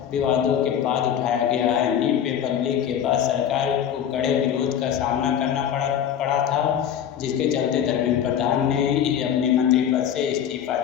विवादों के बाद उठाया गया है। नीट पेपर लीक के बाद सरकार को कड़े विरोध का सामना करना पड़ा था, जिसके चलते धर्मेंद्र प्रधान ने अपने मंत्री पद से इस्तीफा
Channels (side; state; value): right; quieter; 9.2 dB